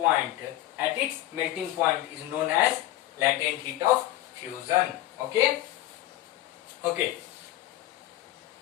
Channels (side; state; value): right; quieter; 14.9 dB